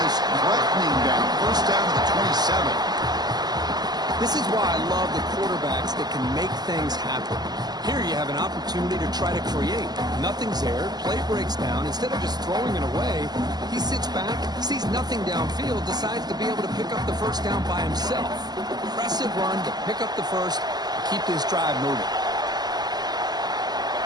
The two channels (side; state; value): left; late; 0.20 ms